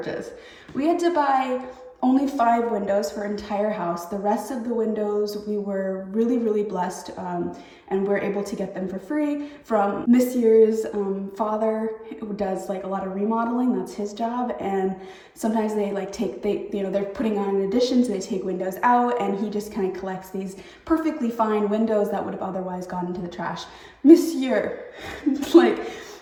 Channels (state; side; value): identical; both; correlation 1.00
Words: We had to buy only 5 windows for our entire house. The rest of the windows, we were really, really blessed, and we're able to get them for free from Monsieur's father, who does like a lot of remodeling. That's his job. And sometimes they like they're putting on an addition, so they take windows out, and he just kind of collects these perfectly fine windows that would have otherwise gone into the trash. Monsieur, like,